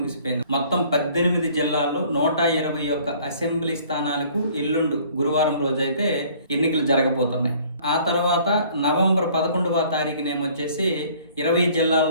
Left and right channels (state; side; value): inverted; both; correlation -0.55